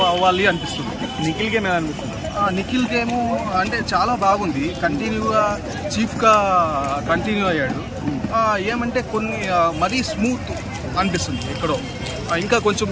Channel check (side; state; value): both; identical; correlation 1.00